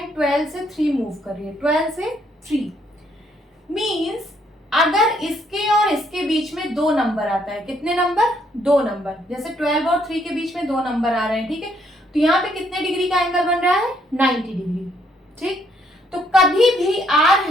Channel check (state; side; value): normal; both; correlation 0.70